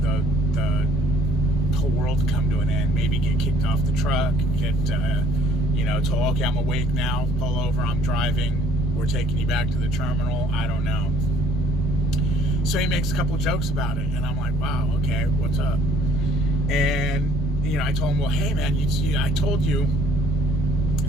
the whole world to come to an end. Maybe get kicked off the truck, get, told, okay, I'm awake now, pull over, I'm driving, we're taking you back to the terminal. I don't know. So he makes a couple jokes about it, and I'm like, wow, okay, what's up? And, I told him, well, hey, man, I told you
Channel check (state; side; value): normal; both; correlation 0.58